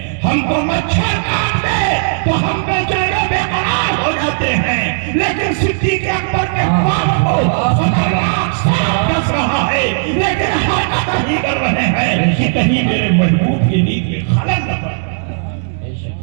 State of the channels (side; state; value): left; silent; digital silence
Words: ہم کو مچھر کاٹ دے تو ہم بے چین و بے قرار ہو جاتے ہیں، لیکن صدیق اکبر میں پاپ کو خطرناک سانپ ڈس رہا ہے لیکن حرکت نہیں کر رہے ہیں کہ کہیں میرے محبوب کی نیند میں خلل نہ پڑے۔